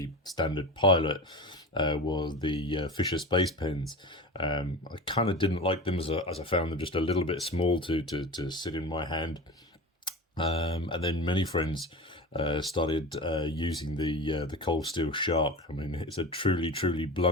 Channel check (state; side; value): normal; both; correlation 0.30